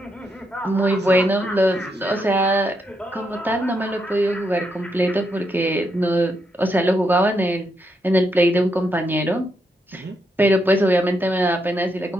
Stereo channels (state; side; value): normal; both; correlation 0.80